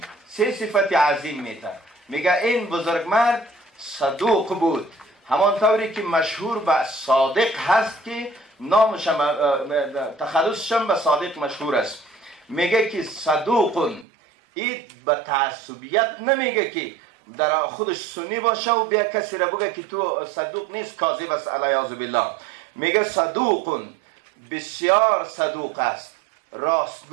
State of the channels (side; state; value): left; drops out; at 14.1 s